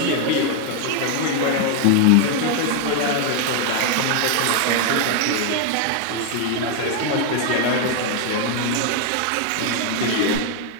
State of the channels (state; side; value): different; both; correlation 0.00